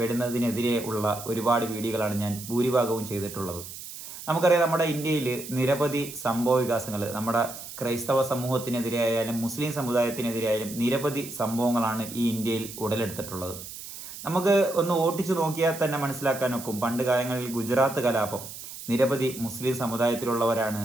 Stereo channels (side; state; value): right; noise; hiss, 12 dB below the sound